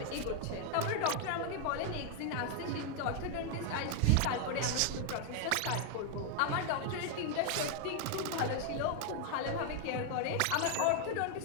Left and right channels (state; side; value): different; both; correlation 0.00